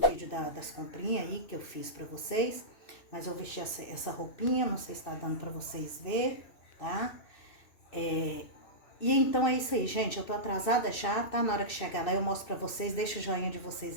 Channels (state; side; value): late; right; 2.6 ms